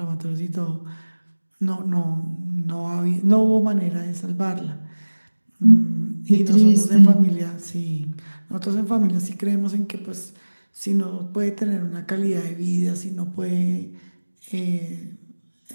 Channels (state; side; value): inverted; both; correlation -1.00